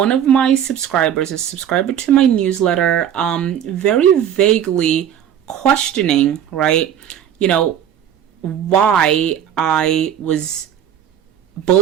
of my subscribers, a subscriber to my newsletter, very vaguely questioning, right, why I was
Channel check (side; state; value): left; quieter; 9.5 dB